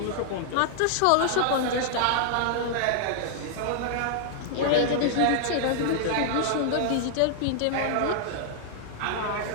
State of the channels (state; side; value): different; both; correlation -0.01